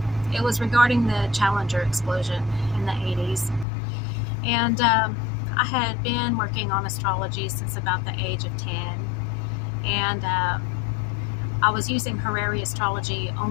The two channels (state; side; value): drops out; right; at 3.7 s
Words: It was regarding the Challenger explosion in the 80s. And I had been working on astrology since about the age of 10. And I was using horary astrology,